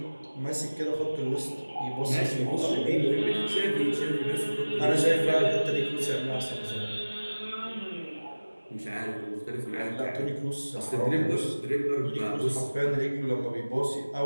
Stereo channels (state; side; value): inverted; both; correlation -1.00